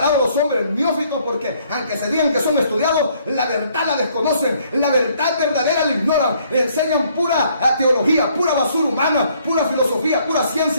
los hombres neófitos, porque aunque se digan que son estudiados, la verdad la desconocen, la verdad verdadera la ignoran, le enseñan pura teología, pura basura humana, pura filosofía, pura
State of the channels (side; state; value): both; inverted; correlation -0.65